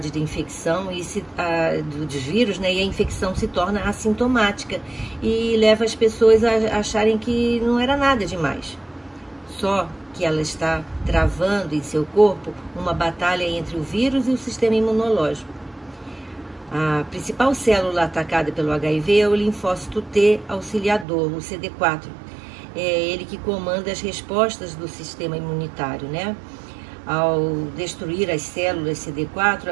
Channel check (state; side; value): drops out; left; at 21.1 s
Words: de infecção dos vírus, né? E a infecção se torna assintomática e leva as pessoas a acharem que não era nada demais. Só que ela está travando em seu corpo uma batalha entre o vírus e o sistema imunológico. A principal célula atacada pelo HIV é o linfócito T auxiliador, o CD4. É ele que comanda as respostas do sistema imunitário, né? Ao destruir as células CD4, a